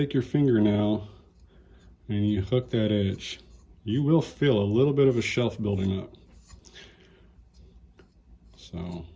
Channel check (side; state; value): both; identical; correlation 1.00